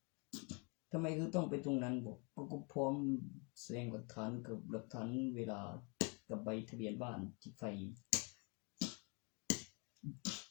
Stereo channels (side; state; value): right; quieter; 33.5 dB